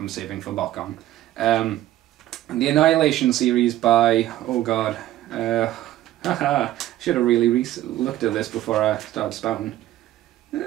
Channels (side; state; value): left; quieter; 14.1 dB